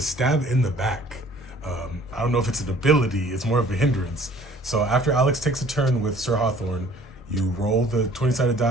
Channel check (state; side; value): normal; both; correlation 0.53